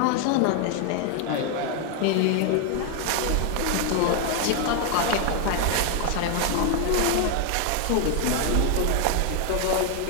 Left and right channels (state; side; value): different; both; correlation 0.00